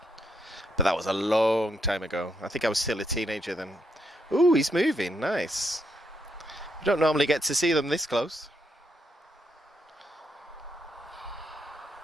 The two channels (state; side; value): normal; both; correlation 0.78